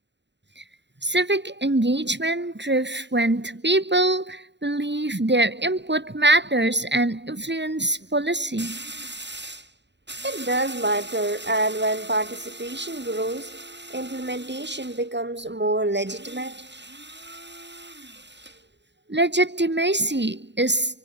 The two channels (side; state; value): left; late; 0.52 ms